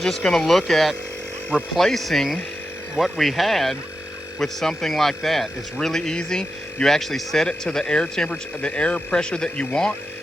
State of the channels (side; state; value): both; normal; correlation 0.89